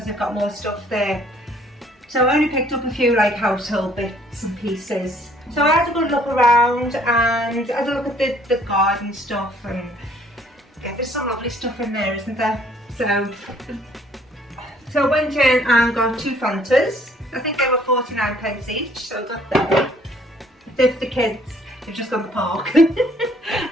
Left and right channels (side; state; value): both; normal; correlation 0.60